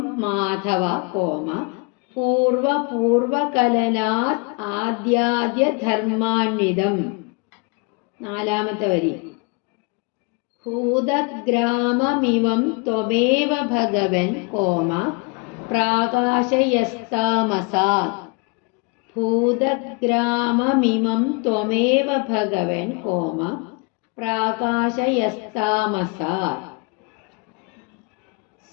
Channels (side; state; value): right; quieter; 30.1 dB